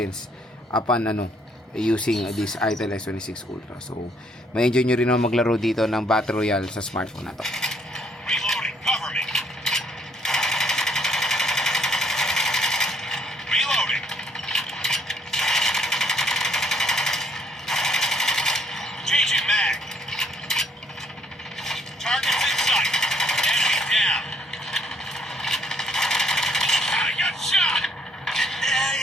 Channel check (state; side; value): normal; both; correlation 0.67